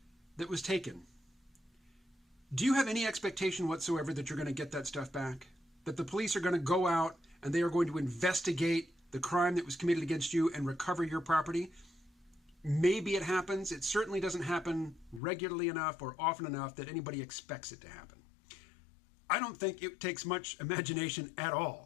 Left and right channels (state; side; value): drops out; right; at 15.2 s